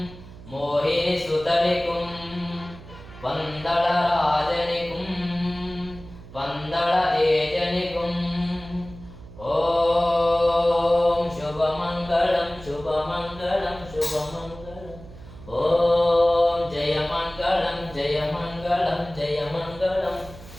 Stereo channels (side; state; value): right; noise; hum, 17 dB below the sound